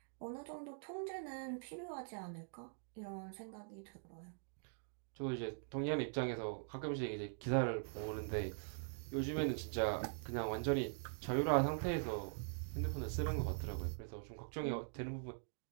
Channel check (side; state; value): left; silent; digital silence